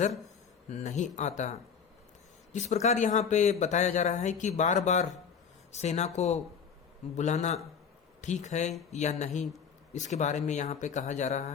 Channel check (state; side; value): quieter; right; 6.8 dB